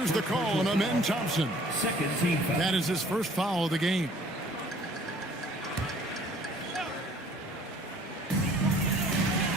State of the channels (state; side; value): normal; both; correlation 0.55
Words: the call on Amen Thompson. Second team foul. That is his first foul of the game.